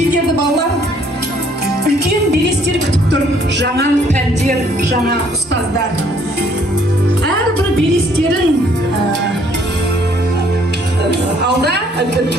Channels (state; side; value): normal; both; correlation 0.63